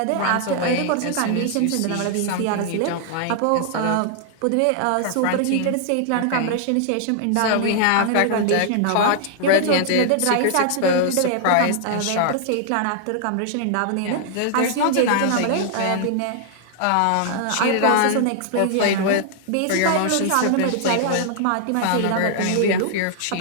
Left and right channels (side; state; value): both; different; correlation 0.00